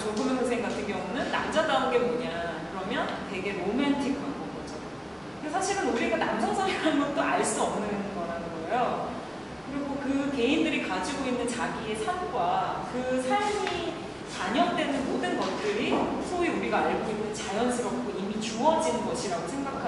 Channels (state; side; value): identical; both; correlation 1.00